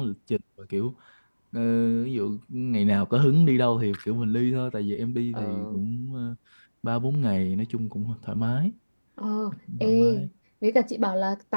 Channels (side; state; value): both; inverted; correlation -1.00